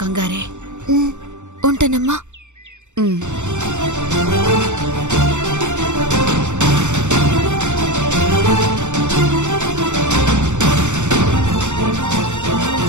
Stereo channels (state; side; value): late; left; 0.84 ms